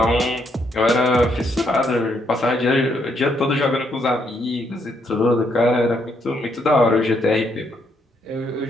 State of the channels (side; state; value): both; normal; correlation 0.74